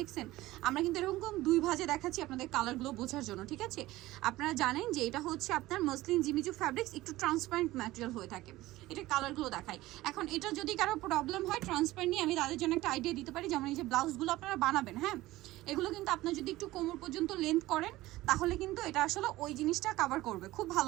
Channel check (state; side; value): quieter; left; 17.5 dB